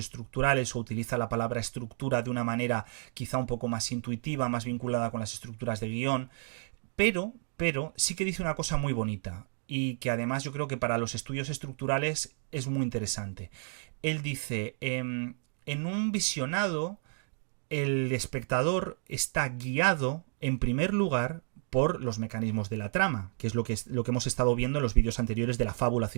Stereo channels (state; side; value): silent; left; 57 dB below the other